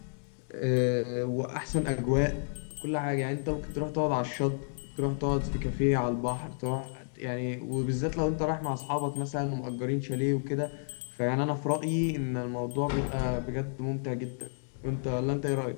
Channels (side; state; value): right; silent; digital silence